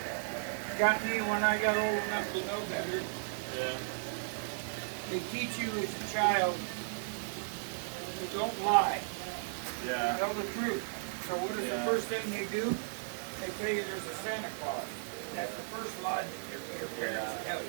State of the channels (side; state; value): left; silent; 54 dB below the other